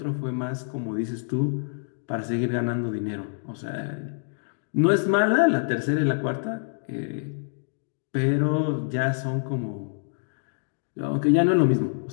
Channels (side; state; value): right; silent; digital silence